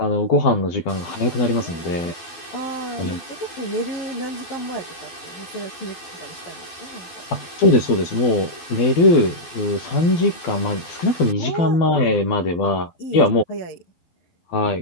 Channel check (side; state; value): right; late; 12 ms